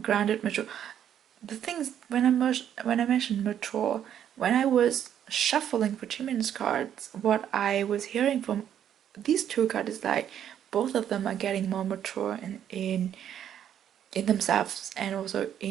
grounded, mature. The things when I mentioned mature, when I was shuffling for Jimin's cards, what I was hearing from these 2 cards is like both of them are getting more mature in themselves and also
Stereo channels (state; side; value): quieter; left; 9.8 dB